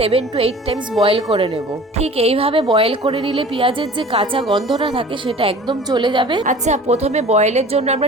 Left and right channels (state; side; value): normal; both; correlation 0.43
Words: to 8 টাইমস বয়েল করে নেব। ঠিক এইভাবে বয়েল করে নিলে পেঁয়াজের যে কাঁচা গন্ধটা থাকে সেটা একদম চলে যাবে। আচ্ছা, প্রথমে বয়েলের জন্য